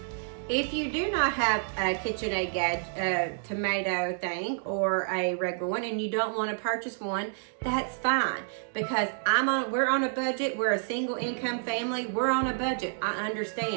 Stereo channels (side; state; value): left; silent; digital silence